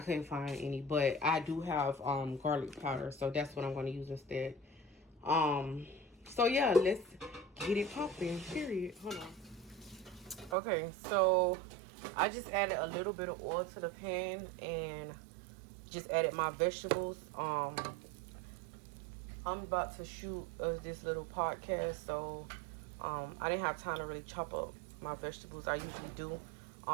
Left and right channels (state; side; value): drops out; left; at 10.6 s